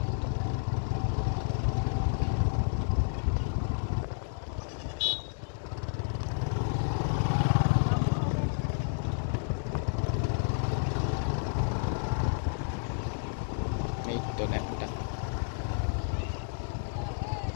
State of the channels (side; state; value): right; silent; digital silence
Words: আসতো। এই তো ড্যামটা